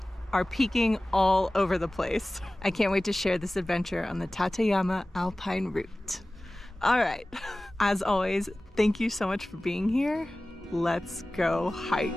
are peeking all over the place. I can't wait to share this adventure on the Tateyama Alpine Route. All right, as always, thank you so much for being here. Let's go hike.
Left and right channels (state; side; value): normal; both; correlation 0.97